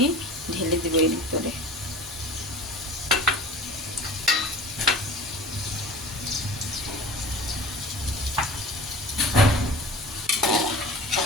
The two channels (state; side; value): normal; both; correlation 0.40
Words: ঢেলে দেবো এর ভিতরে।